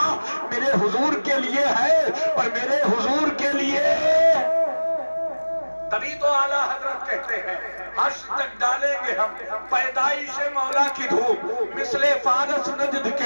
میرے حضور کے لیے ہے اور میرے حضور کے لیے. تبھی تو اعلیٰ حضرت کہتے ہیں حشر تک ڈالیں گے ہم پیدائش مولا کی دھوپ, مثل فارس نجد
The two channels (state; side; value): inverted; both; correlation -1.00